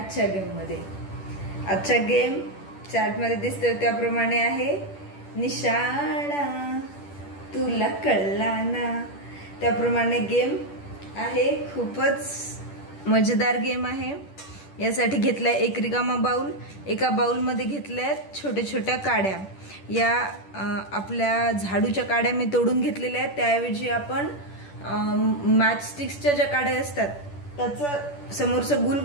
गेममध्ये। आजचा गेम चार्टमध्ये दिसतोय त्याप्रमाणे आहे निशाणा तुला कळला ना। त्याप्रमाणे गेम आहे, खूपच मजेदार गेम आहे। यासाठी घेतलाय एक रिकामा बाउल, एका बाउलमध्ये घेतल्यात छोट्या छोट्या काड्या। या आपल्या झाडूच्या काड्या मी तोडून घेतलेल्या आहेत, त्याऐवजी आपण मॅच स्टिक्सच्या ज्या काड्या असतात त्याचं समोरचं गुल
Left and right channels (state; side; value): late; right; 10 ms